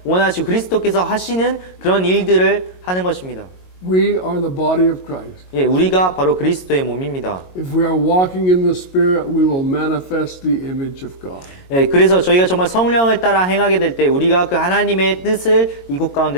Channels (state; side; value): late; right; 22 ms